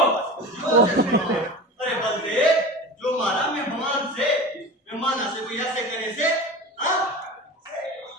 अरे बंदे, जो मारा मेहमाना से कोई ऐसे करे से, हाँ?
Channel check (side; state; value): both; normal; correlation 0.32